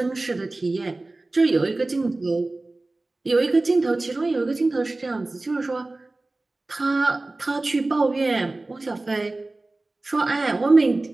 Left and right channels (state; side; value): quieter; left; 3.0 dB